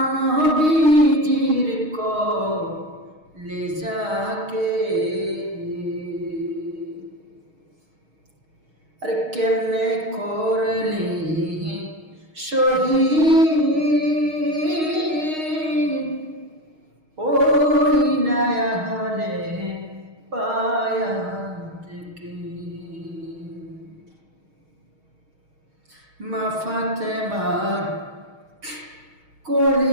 নবীজির কলেজাকে, আরে কেমনে করলে শহীদ ওই নয়া হলে পায়া থেকে মা ফাতেমার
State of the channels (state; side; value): late; left; 6.4 ms